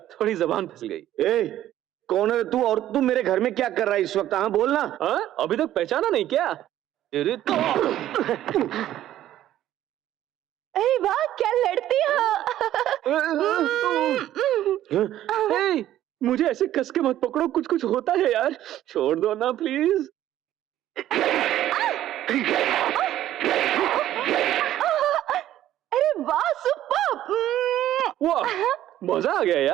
थोड़ी जबान फिसल गई। ए, कौन है तू और तू मेरे घर में क्या कर रहा है इस वक्त? हाँ बोलना। अभी तक पहचाना नहीं क्या? अरे तो अरे वाह, क्या लड़ती हो। मुझे ऐसे कस के मत पकड़ो, कुछ कुछ होता है यार, छोड़ दो ना प्लीज। अरे वाह, सुपर। वाह, मजा आ गया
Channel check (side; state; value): left; quieter; 12.8 dB